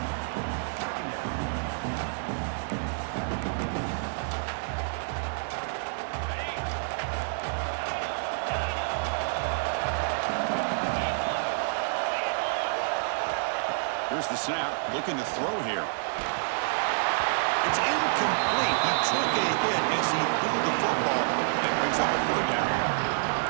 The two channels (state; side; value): silent; left; digital silence